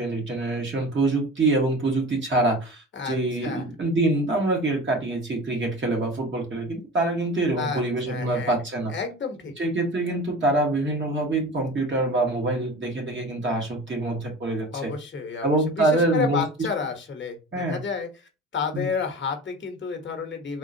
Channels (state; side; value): normal; both; correlation 0.36